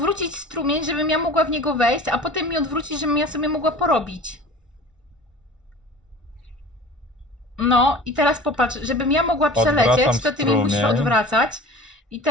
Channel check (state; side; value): normal; both; correlation 0.40